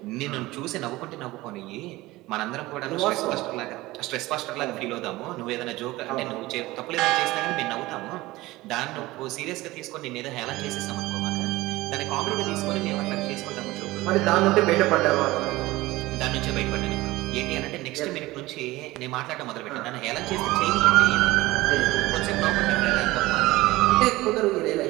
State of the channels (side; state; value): left; quieter; 19.0 dB